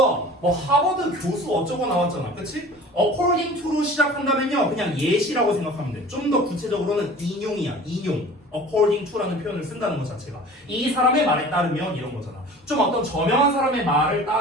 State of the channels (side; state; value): both; normal; correlation 0.43